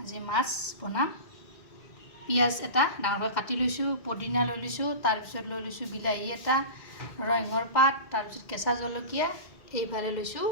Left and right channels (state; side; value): late; right; 2.1 ms